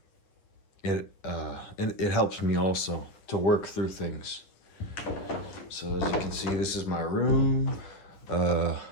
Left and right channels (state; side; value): late; right; 10 ms